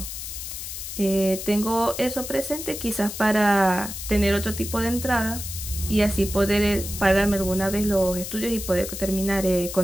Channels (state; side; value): noise; left; hiss, 8 dB below the sound